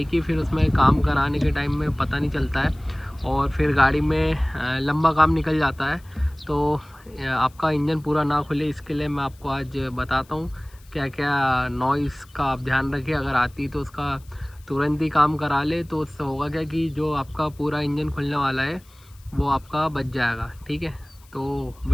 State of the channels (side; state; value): left; noise; hiss, 28 dB below the sound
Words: की, फिर उसमें काम कराने के टाइम में पता नहीं चलता है और फिर गाड़ी में लंबा काम निकल जाता है। तो आपका इंजन पूरा ना खुले, इसके लिए मैं आपको आज बताता हूँ क्या क्या नॉइज़ का आप ध्यान रखें। अगर आती तो उसका तुरंत ही काम करा ले, तो उससे होगा क्या कि जो आपका पूरा इंजन खुलने वाला है वो आपका बच जाएगा। ठीक है, तो